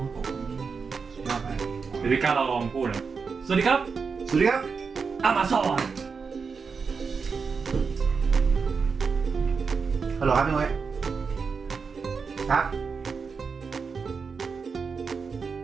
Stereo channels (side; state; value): left; quieter; 5.3 dB